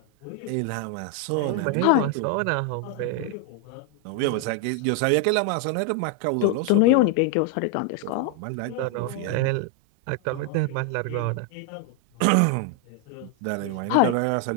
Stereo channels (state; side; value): different; both; correlation 0.00